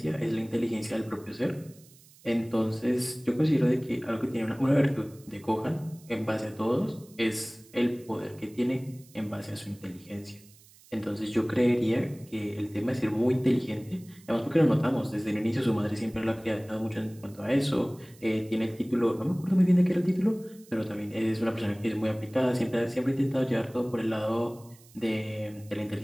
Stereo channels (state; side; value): noise; right; hiss, 25 dB below the sound